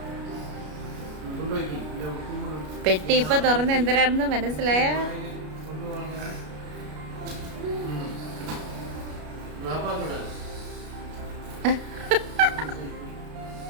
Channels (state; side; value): late; left; 33 ms